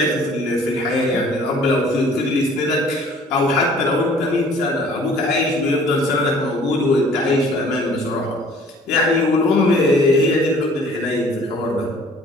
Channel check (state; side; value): normal; both; correlation 0.53